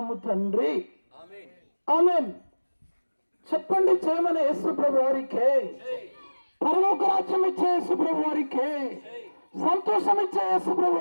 తండ్రి, ఆమేన్. చెప్పండి, చేయమని యేసు ప్రభు వారికే, పరలోక రాజ్యం ఇచ్చే యేసు ప్రభు వారికే, సంతోషం ఇచ్చే యేసు ప్రభు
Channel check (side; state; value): both; inverted; correlation -1.00